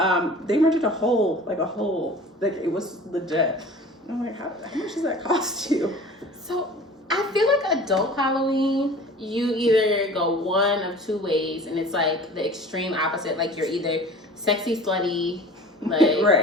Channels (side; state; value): both; normal; correlation 0.42